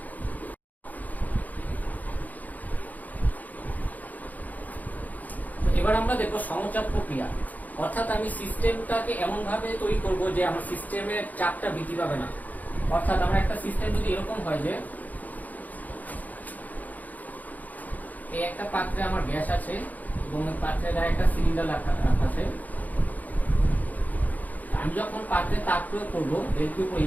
এবার আমরা দেখবো সমচাপ প্রক্রিয়া, অর্থাৎ আমি সিস্টেমটাকে এমন ভাবে তৈরি করব যে আমার সিস্টেমের চাপটা বৃদ্ধি পাবে না। অর্থাৎ আমার একটা সিস্টেম যদি এরকম হয় যে এই একটা পাত্রে আমার গ্যাস আছে এবং এই পাত্রের গায়ে একটা সিলিন্ডার রাখা আছে, আমি যখন পাত্রে তাপ প্রয়োগ করবো ডেলকিউ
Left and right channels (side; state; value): right; late; 0.080 ms